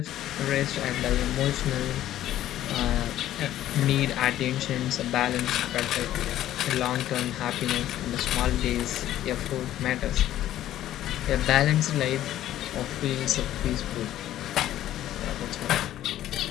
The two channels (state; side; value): quieter; right; 13.0 dB